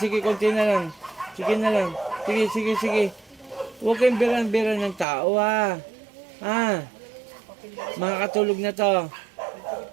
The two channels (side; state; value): left; drops out; at 5.1 s